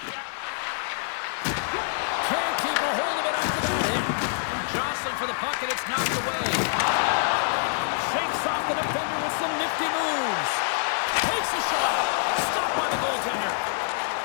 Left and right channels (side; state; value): right; silent; 61 dB below the other